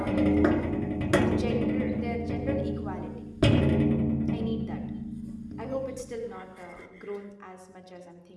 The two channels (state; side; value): identical; both; correlation 1.00